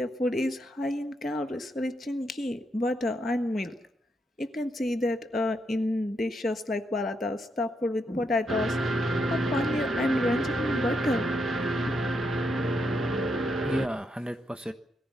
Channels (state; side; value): normal; both; correlation 0.80